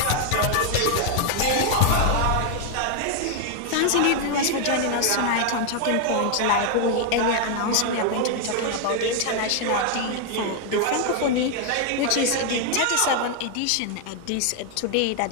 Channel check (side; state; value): both; different; correlation 0.00